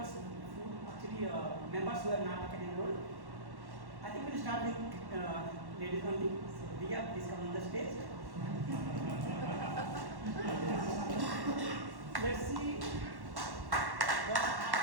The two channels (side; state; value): left; late; 1.1 ms